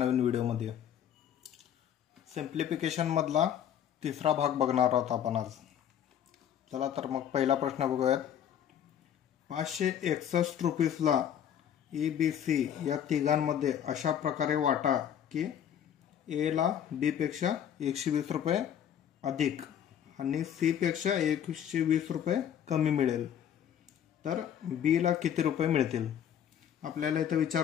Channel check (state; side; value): quieter; right; 9.5 dB